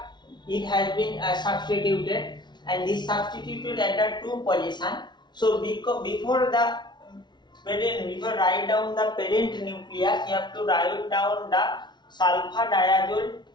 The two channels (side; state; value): right; late; 0.21 ms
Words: it has been substituted, and this substituted at the 2 position. So before write down the parent nucleus, you have to write down the sulfadiazole